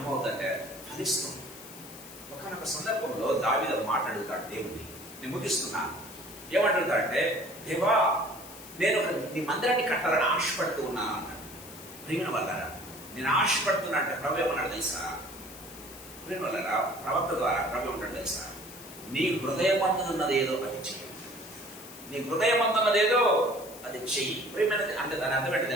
ఫలిస్తుంది. ఒకనొక సందర్భంలో దావీదు మాట్లాడుతాడు దేవుడిని. నేను ముగిస్తున్నా. ఏమంటాడంటే, దేవా నేను నీ మందిరాన్ని కట్టాలని ఆశపడుతూ ఉన్నాను అన్నాడు. ప్రేమ వల్లరా నేను ఆశపడుతున్నా అంటే ప్రభు ఏమన్నాడు తెలుసా? ప్రేమ వల్లరా ప్రవక్త ద్వారా ప్రభు ఏమంటాడు తెలుసా? నీ హృదయమందున్నది ఏదో అది చెయ్యి. నీ హృదయమందున్నదేదో అది చెయ్యి. ప్రేమైనది అంటే దాని అర్థం ఏంటో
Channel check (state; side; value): noise; left; hiss, 16 dB below the sound